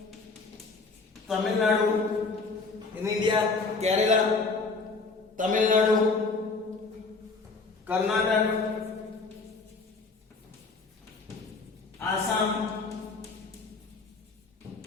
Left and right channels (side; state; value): right; quieter; 4.1 dB